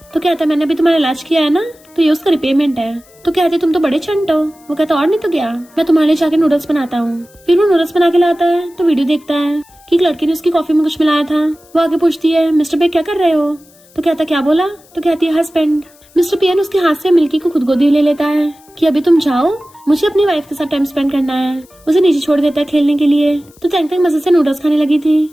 तो कहता है मैंने अभी तुम्हारा इलाज किया है ना, तो ये उसका रिपेमेंट है। तो कहती तुम तो बड़े चंट हो। वो कहता और नहीं तो क्या, मैं तुम्हारे लिए जाके नूडल्स बनाता हूँ। फिर वो नूडल्स बना के लाता है तो वीडियो देखता है कि एक लड़की ने उसकी कॉफी में कुछ मिलाया था। वो आगे पूछती है मिस्टर पे क्या कर रहे हो? तो कहता क्या बोला? तो कहती है हस्बैंड। मिस्टर पियन उसके हाथ से मिल्की को खुद गोदी ले लेता है कि अभी तुम जाओ, मुझे अपनी वाइफ के साथ टाइम स्पेंड करना है। उसे नीचे छोड़ देता है खेलने के लिए। तो तंग तंग मजे से नूडल्स खाने लगी थी।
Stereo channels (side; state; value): left; noise; hiss, 28 dB below the sound